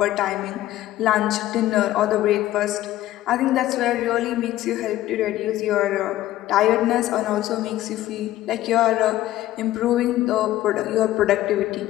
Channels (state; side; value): quieter; right; 14.7 dB